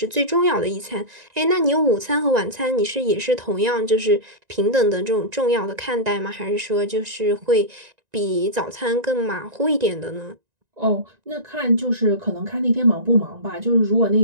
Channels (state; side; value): late; left; 1.9 ms